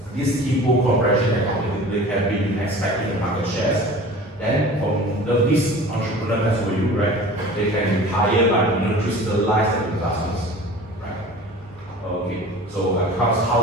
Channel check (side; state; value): both; normal; correlation 0.40